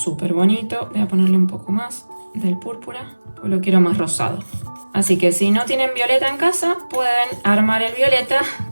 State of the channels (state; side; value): inverted; both; correlation -1.00